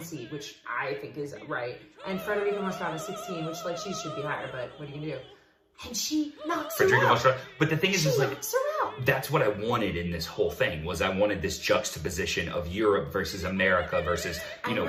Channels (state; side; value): identical; both; correlation 1.00